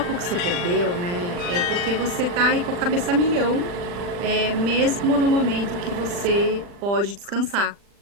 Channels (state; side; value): late; left; 40 ms